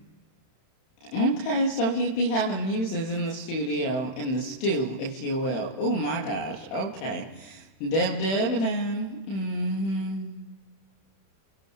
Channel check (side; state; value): right; late; 31 ms